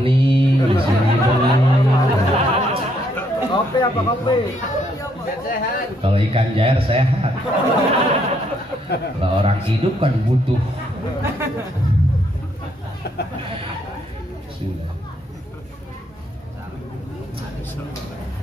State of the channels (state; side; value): normal; both; correlation 0.72